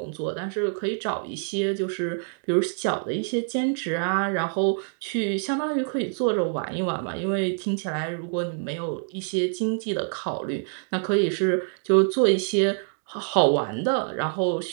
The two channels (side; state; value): left; silent; 61 dB below the other